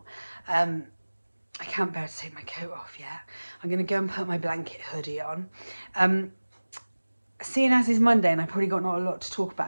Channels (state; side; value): inverted; both; correlation -1.00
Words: I can't bear to take my coat off yet. I'm going to go and put my blanket hoodie on. Seeing as it's Monday and I've probably got not a lot to talk